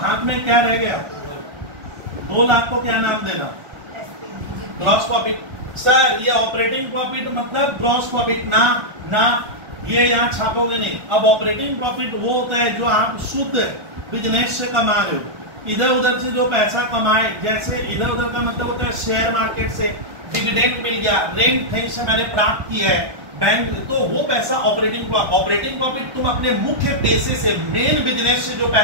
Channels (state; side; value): late; left; 1.4 ms